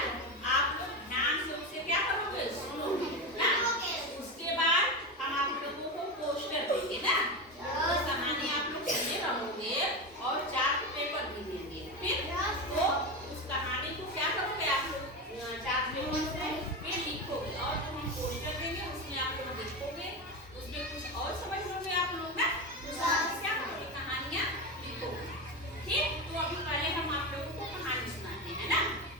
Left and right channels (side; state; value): both; normal; correlation 0.18